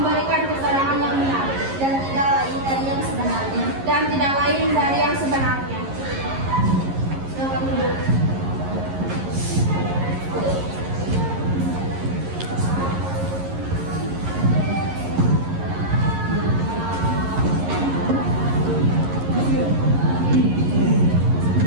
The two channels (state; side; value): late; left; 11 ms